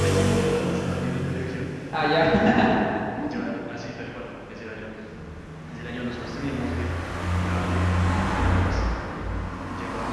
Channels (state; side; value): identical; both; correlation 1.00